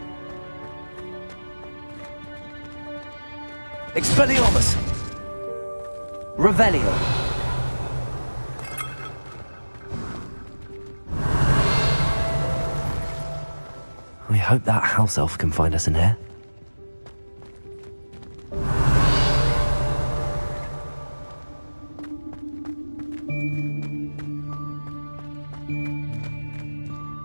Expelliarmus. Revelio. We hope that house elf can find us in here.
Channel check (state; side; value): inverted; both; correlation -1.00